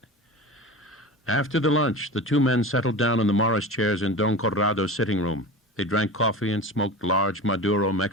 After the lunch, the 2 men settled down in the Morris chairs in Don Corrado's sitting room. They drank coffee and smoked large Maduro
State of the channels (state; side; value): normal; both; correlation 0.31